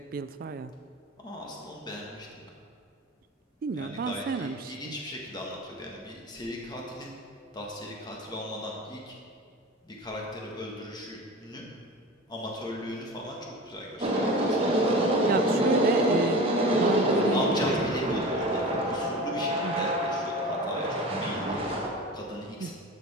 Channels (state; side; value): normal; both; correlation 0.33